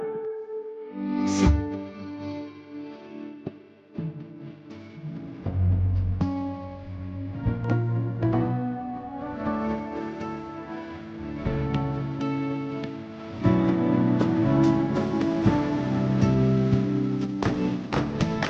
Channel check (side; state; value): both; identical; correlation 1.00